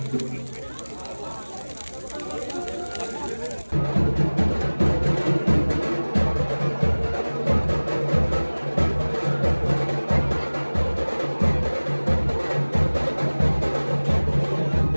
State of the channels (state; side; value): inverted; both; correlation -1.00